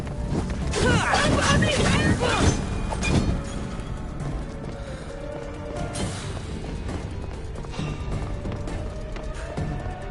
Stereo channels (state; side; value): identical; both; correlation 1.00